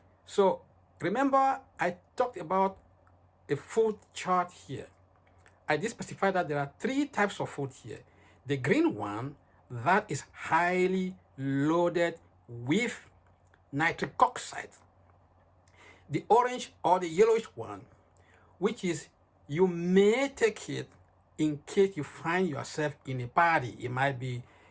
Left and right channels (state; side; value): identical; both; correlation 1.00